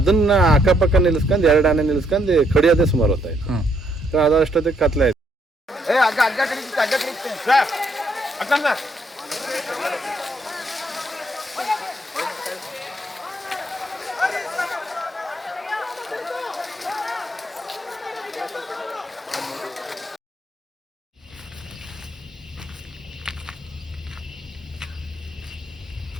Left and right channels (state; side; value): normal; both; correlation 0.71